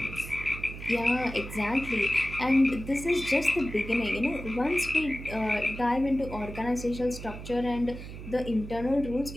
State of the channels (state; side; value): noise; right; hum, 11 dB below the sound